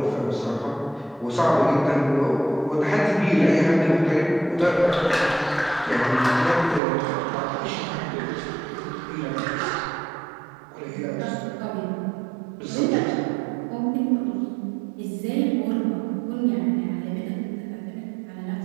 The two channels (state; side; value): drops out; left; at 6.8 s